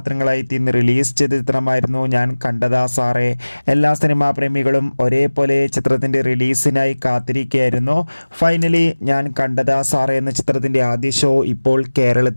ഇന്ന് റിലീസ് ചെയ്ത ചിത്രമായിരുന്നു ഞാൻ കണ്ടതാ സാറേ. എല്ലാ സിനിമാ പ്രേമികളും ഒരേപോലെ ചിത്രത്തിൻ്റെ റിലീസിനായി കാത്തിരിക്കുകയായിരുന്നു. ഫൈനലി ഞാൻ കണ്ടതാ സാറേ എന്ന ചിത്രത്തിൻ്റെ ആദ്യ ഷോ ഇപ്പോൾ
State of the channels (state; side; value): inverted; both; correlation -1.00